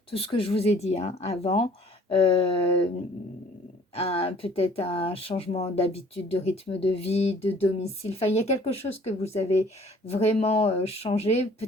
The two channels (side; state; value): both; normal; correlation 0.55